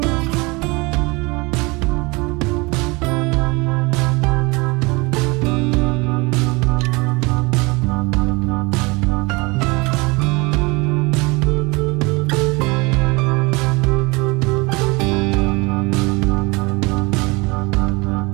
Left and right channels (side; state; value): left; quieter; 25.8 dB